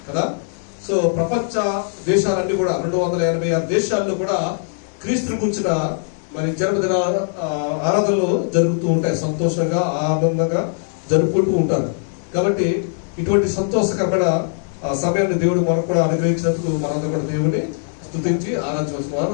కదా. సో ప్రపంచ దేశాలన్నీ కూడా 286 దేశాల్లో కూడా క్రీస్తుని కూర్చున్న మరి జన్మదిన ఆరాధనలు జరుగుతూ ఉంటాయి. సంతోషంగా ఆనందంగా జరుపుకుంటూ ఉంటారు. కాబట్టి ఇటువంటి సంతోషకరమైన సమయాన్ని దేవుడు మనకు కూడా అనుగ్రహించినందుకు మనందరూ కూడా దేవుడిని స్తుతించి ఆరాధించవలసిన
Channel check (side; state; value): right; silent; 65 dB below the other